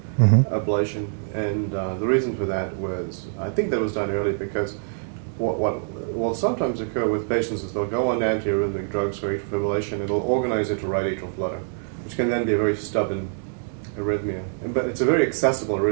ablation, and the reason for that was, I think that was done early because what will sometimes occur with patients is they'll go on antiarrhythmic drugs for atrial fibrillation, it'll organize into right atrial flutter, which can then be a very stubborn arrhythmia. But it's a very accessible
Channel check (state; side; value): silent; left; 62 dB below the other